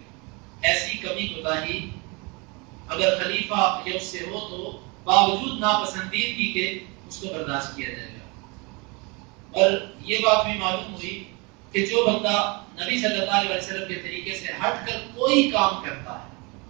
ایسی کمی کوتاہی اگر خلیفہ یا اس سے ہو تو باوجود ناپسندیدگی کے اس کو برداشت کیا جائے گا. اور یہ بات بھی معلوم ہوئی کہ جو بندہ نبی صلی اللہ علیہ وسلم کے طریقے سے ہٹ کر کوئی کام کرتا ہے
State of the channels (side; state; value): left; quieter; 28.9 dB